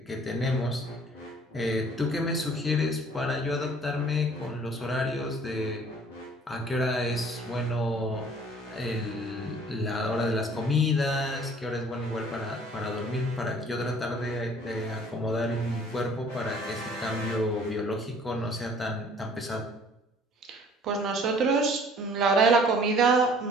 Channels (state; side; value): normal; both; correlation 0.54